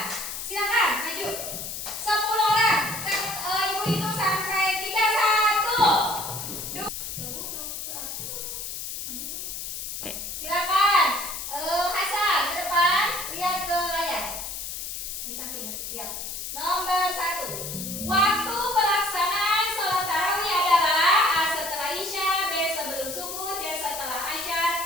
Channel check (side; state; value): left; noise; hiss, 6 dB below the sound